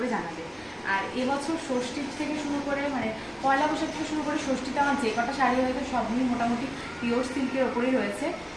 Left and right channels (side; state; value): both; identical; correlation 1.00